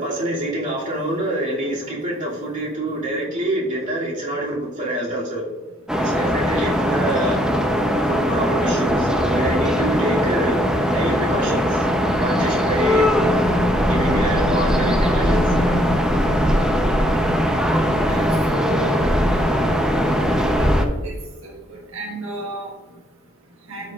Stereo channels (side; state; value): both; normal; correlation 0.68